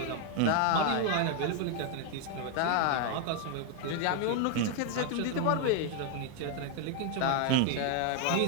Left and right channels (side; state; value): both; different; correlation 0.01